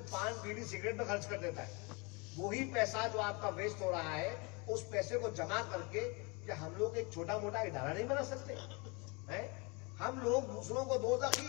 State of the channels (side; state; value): right; quieter; 29.3 dB